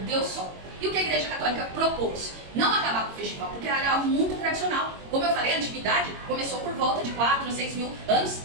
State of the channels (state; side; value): late; left; 22 ms